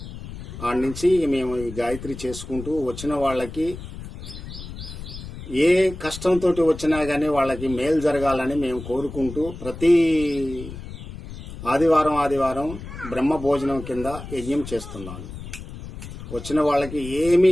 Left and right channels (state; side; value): noise; left; rumble, 12 dB below the sound